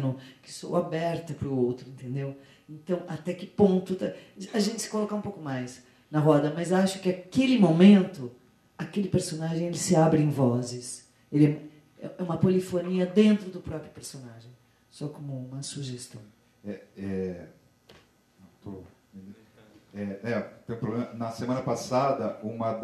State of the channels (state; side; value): identical; both; correlation 1.00